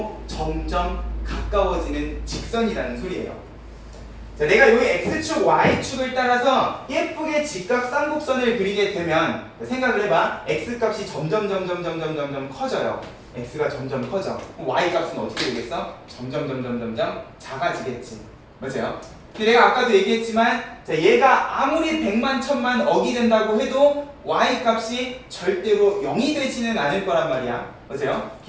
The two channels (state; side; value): identical; both; correlation 1.00